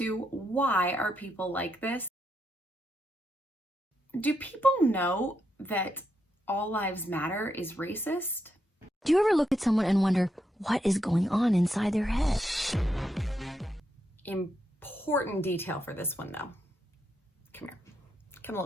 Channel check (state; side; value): normal; both; correlation 0.81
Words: Why Are People Like This? Do people know that all lives matter is racist? Do you ever look at someone and wonder what is going on inside their head? Important detail for this one though. Come here. Come a